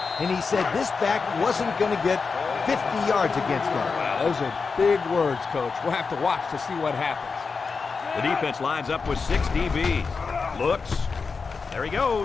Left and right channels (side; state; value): right; quieter; 4.9 dB